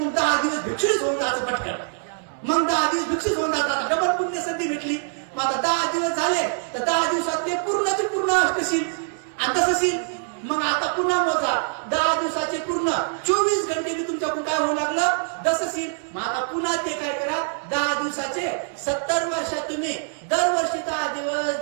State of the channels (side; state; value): left; silent; digital silence